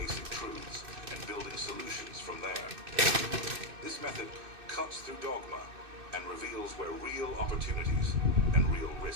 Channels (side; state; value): left; late; 2.6 ms